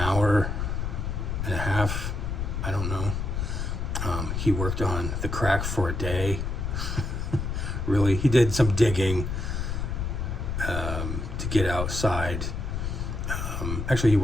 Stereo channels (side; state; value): left; noise; rumble, 2 dB below the sound